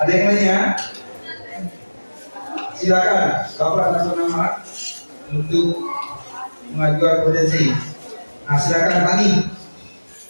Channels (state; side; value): inverted; both; correlation -1.00